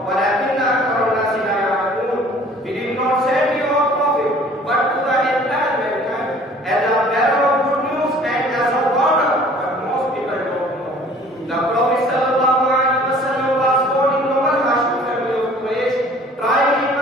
وَلَكِنَّ أَكْثَرَ النَّاسِ لَا يَعْلَمُونَ. We did not send you a prophet but to the entire mankind as a bearer of good news and as a warner, but most people don't know. The Prophet sallallahu alaihi wasallam was born in noble Hashim family of Quraysh, tried in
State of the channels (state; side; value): normal; both; correlation 0.51